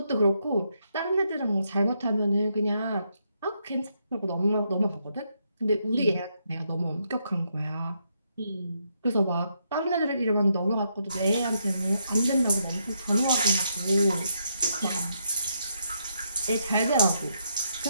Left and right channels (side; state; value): both; inverted; correlation -0.78